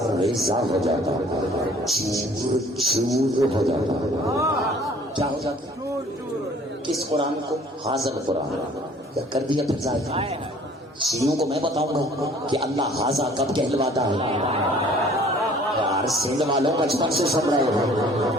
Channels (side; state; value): both; normal; correlation 0.53